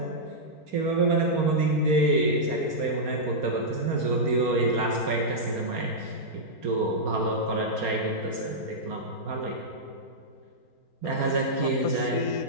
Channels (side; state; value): right; late; 4.4 ms